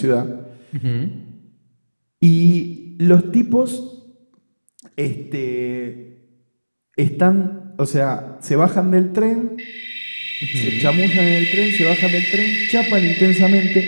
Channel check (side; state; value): both; inverted; correlation -1.00